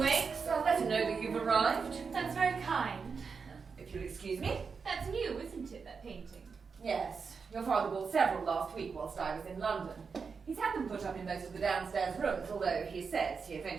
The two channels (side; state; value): left; quieter; 5.4 dB